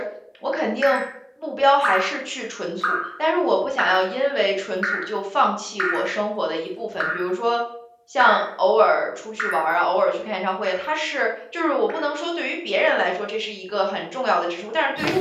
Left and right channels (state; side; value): identical; both; correlation 1.00